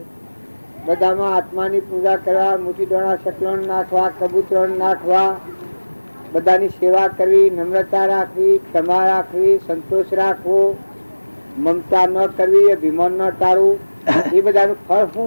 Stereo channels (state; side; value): inverted; both; correlation -1.00